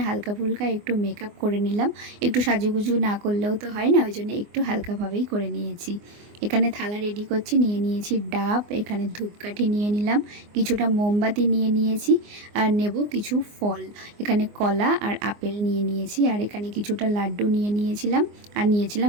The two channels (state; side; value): late; left; 24 ms